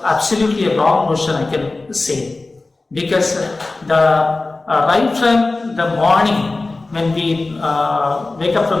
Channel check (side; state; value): right; quieter; 3.3 dB